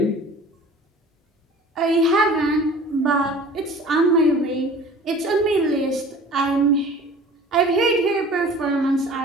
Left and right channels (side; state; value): both; normal; correlation 0.44